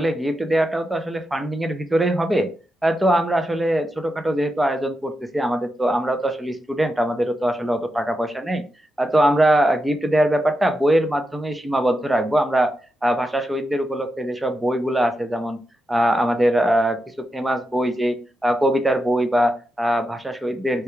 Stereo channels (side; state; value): both; normal; correlation 0.87